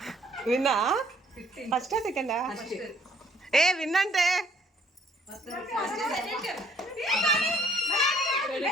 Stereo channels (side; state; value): both; normal; correlation 0.62